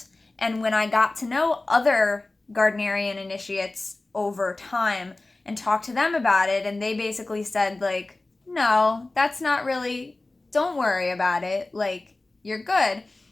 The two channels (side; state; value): right; quieter; 3.0 dB